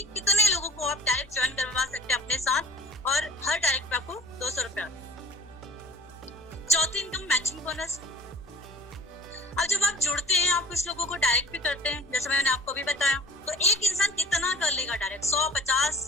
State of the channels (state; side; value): noise; left; hum, 25 dB below the sound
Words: लोगों को आप डायरेक्ट ज्वाइन करवा सकते हैं अपने साथ, और हर डायरेक्ट पे आपको 200 रुपए आता है। चौथी इनकम मैचिंग बोनस। अब जब आप जुड़ते हैं, आप कुछ लोगों को डायरेक्ट भी करते हैं, जैसे मैंने आपको भी बताया, तो एक इंसान कितना कर लेगा डायरेक्ट? 100,